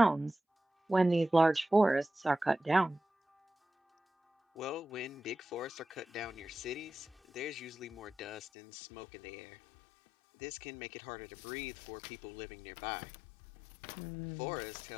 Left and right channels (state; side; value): drops out; right; at 8.4 s